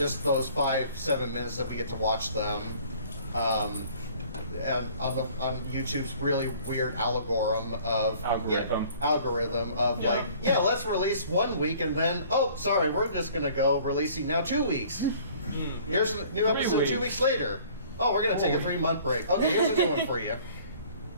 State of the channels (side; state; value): both; inverted; correlation -0.53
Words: those 5-7 minutes that we get to watch them. And on YouTube's really weird algorithm of like, yeah, let's release 1 week and then, oh, sorry, we're just gonna go releasing now 2 weeks. Here's a new episode 2 weeks later. Oh, we're gonna take a 3-month break. Okay, here's a new one for you.